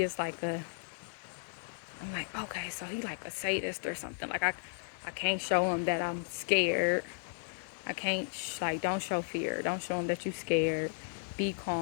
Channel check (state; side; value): silent; right; digital silence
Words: is like a, I'm like, okay, so he like a sadist or something. Like I can't show him that I'm scared. I can't, like, don't show fear. Don't show him that you scared. Be